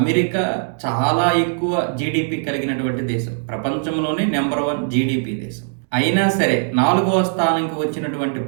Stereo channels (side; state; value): left; silent; digital silence